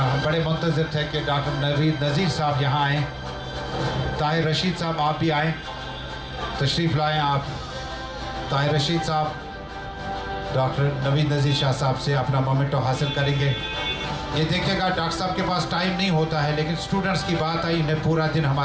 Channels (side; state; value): both; identical; correlation 1.00